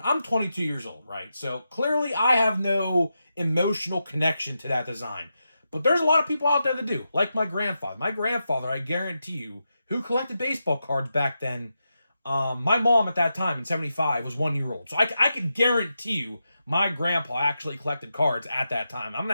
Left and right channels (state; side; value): inverted; both; correlation -0.87